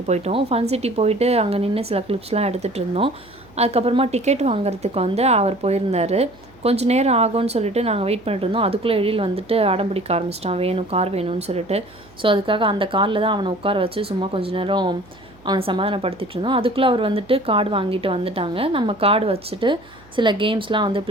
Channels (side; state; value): right; noise; hum, 27 dB below the sound